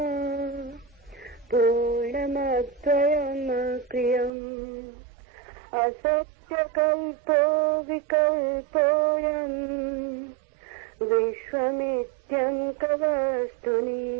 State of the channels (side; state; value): left; drops out; at 4.3 s